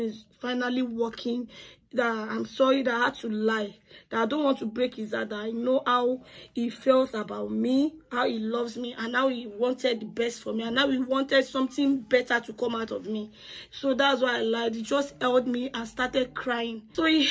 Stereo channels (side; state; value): both; identical; correlation 1.00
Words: is finally working. That I'm sorry that I had to lie. That I don't want to break his heart. That I know how he feels about me, how he loves me, and how he wanted the best for me, and how he wanted something better to come out of me. So that's why I lied. He just held me and started crying. So he